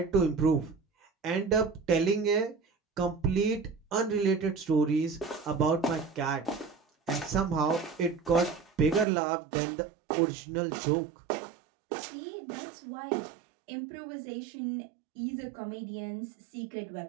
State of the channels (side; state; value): left; drops out; at 9.1 s